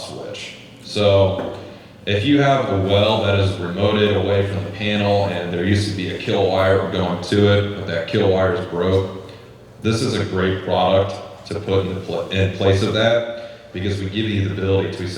switch. So if you have a well that is remoted away from the panel and there used to be a kill wire going to it, but that kill wire is broke, this is a great product to put in place of that, because we give you the ability to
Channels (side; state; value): both; identical; correlation 1.00